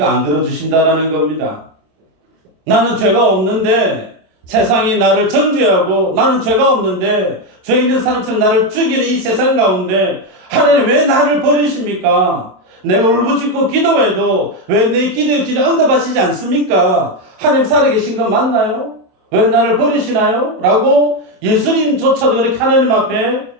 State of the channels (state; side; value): late; left; 27 ms